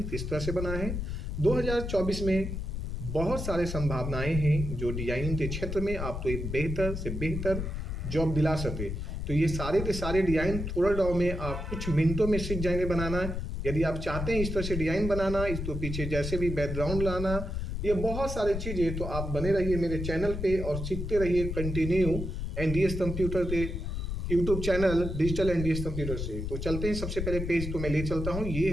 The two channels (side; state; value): left; noise; rumble, 4 dB below the sound